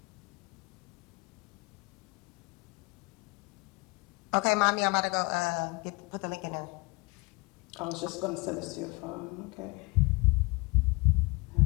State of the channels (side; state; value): right; quieter; 26.5 dB